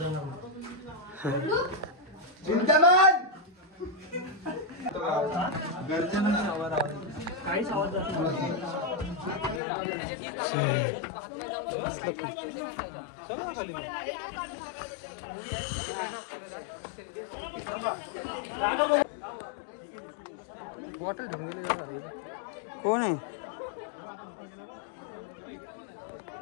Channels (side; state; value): right; drops out; at 9.6 s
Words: काहीच आवाज बॉटल कोण आहे?